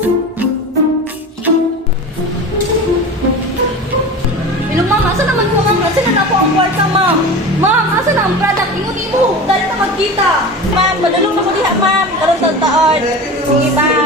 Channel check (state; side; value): normal; both; correlation 0.32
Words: Hello, ma'am. Asa naman po, ma'am? Asa na po ang kwarta, ma'am? Ma'am, asa na ang product? Ingo-ingo. Dali na magkita. Ma'am, madulong na ko diha, ma'am. Karoon taon. Sige,